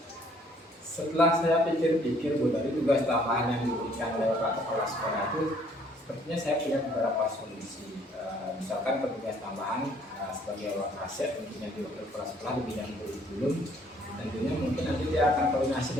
Setelah saya pikir-pikir Bu, dari tugas tambahan yang diberikan oleh Pak Kepala Sekolah itu, sepertinya saya punya beberapa solusi. Misalkan petugas tambahan sebagai wakasek tentunya di wakil kepala sekolah di bidang kurikulum, tentunya mungkin nanti dia akan koordinasi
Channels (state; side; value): normal; both; correlation 0.62